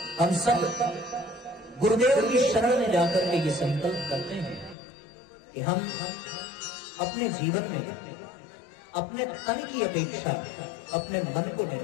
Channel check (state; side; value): drops out; right; at 4.8 s